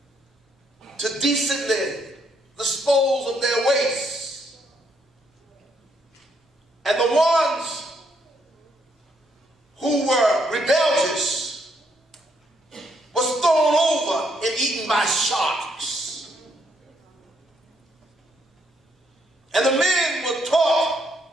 to decently dispose of their waste. And the ones who were rebellious was thrown over and eaten by sharks. And the men were taught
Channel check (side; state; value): both; normal; correlation 0.74